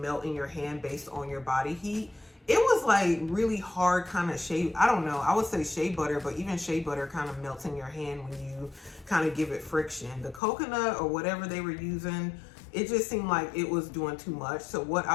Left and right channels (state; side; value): drops out; right; at 10.4 s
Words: in your hand based on your body heat. It was like really hard kind of shea, I don't know, I would say shea butter, but even shea butter kind of melts in your hand when you kind of give it friction. The coconut or whatever they were using, it just seemed like it was doing too much. So what